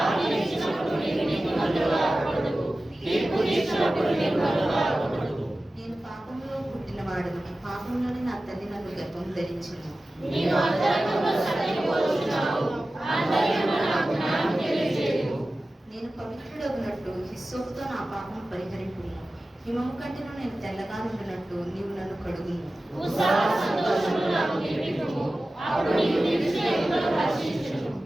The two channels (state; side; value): normal; both; correlation 0.95